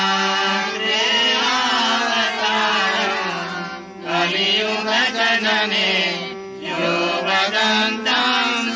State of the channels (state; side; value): identical; both; correlation 1.00